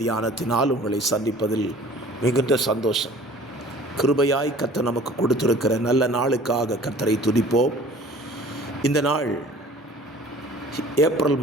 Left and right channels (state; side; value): normal; both; correlation 0.48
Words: தியானத்தினால் உங்களை சந்திப்பதில் மிகுந்த சந்தோஷம். கிருபையாய் கர்த்தர் நமக்கு கொடுத்திருக்கிற நல்ல நாளுக்காக கர்த்தரை துதிப்போம். இந்த நாள் ஏப்ரல்